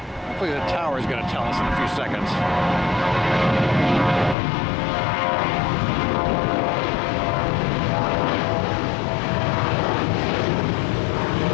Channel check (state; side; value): drops out; right; at 4.4 s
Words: the tower is going to tell us in a few seconds.